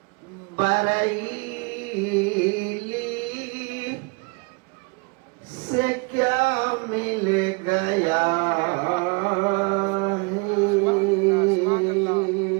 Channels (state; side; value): quieter; left; 31.3 dB